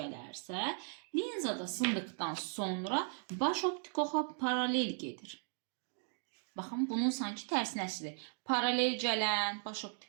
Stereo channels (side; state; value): left; silent; 53 dB below the other